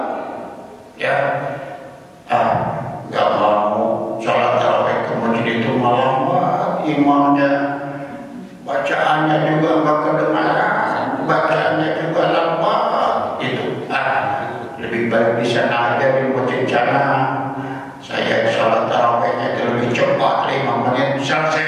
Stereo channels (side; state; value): both; identical; correlation 1.00